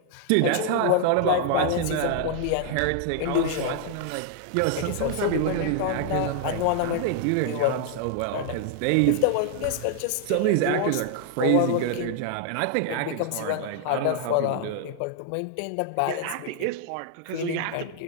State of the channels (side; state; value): both; different; correlation 0.00